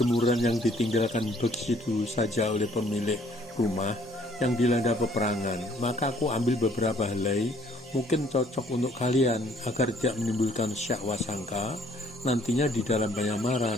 yang ditinggalkan begitu saja oleh pemilik rumah yang dilanda peperangan, maka aku ambil beberapa helai, mungkin cocok untuk kalian agar tidak menimbulkan syak wasangka nantinya di dalam penyamaran.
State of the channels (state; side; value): normal; both; correlation 0.61